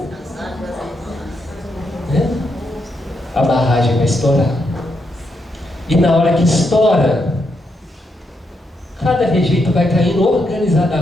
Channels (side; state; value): both; normal; correlation 0.81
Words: A barragem vai estourar. E na hora que estoura, cada rejeito vai caindo